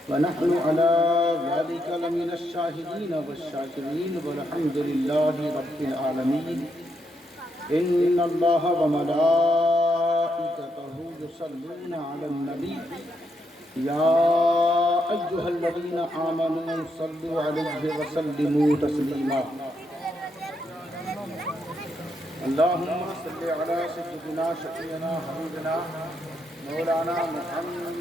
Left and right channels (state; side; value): normal; both; correlation 0.79